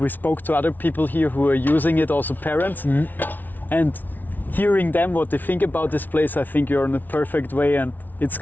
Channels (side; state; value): right; late; 0.084 ms